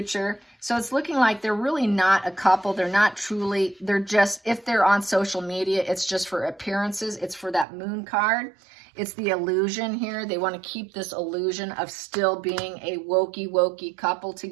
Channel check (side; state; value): left; drops out; at 7.7 s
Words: So it's looking like they're really not a couple. They're not truly, they're just, if they're on social media, it's just for appearances. It's for that moon card. It's the illusion here. They want to keep this illusion of still being a wokey couple